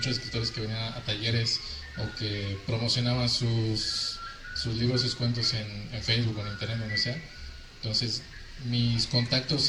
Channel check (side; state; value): both; identical; correlation 1.00